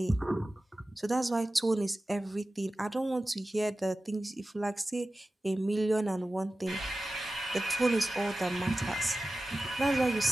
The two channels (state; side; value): normal; both; correlation 0.95